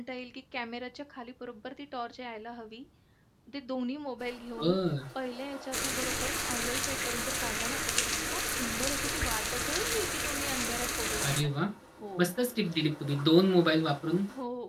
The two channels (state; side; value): identical; both; correlation 1.00